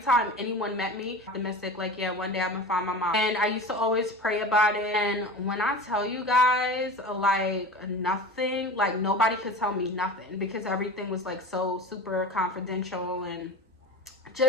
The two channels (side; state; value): both; normal; correlation 0.32